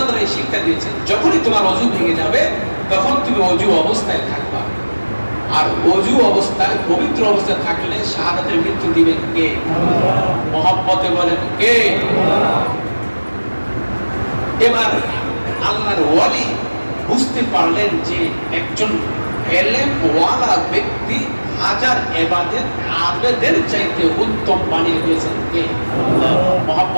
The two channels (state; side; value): inverted; both; correlation -1.00